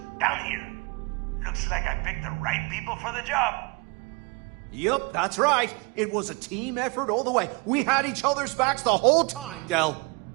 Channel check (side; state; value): left; quieter; 28.7 dB